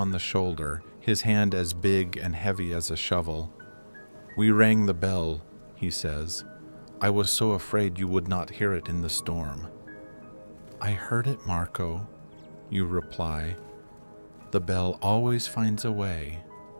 the shoulder, his hand as big and heavy as a shovel. "We rang the bell," he says. "I was so afraid you would not hear it in the storm." "I heard it, Marco," you reply. "The bell always finds a way."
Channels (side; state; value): both; inverted; correlation -1.00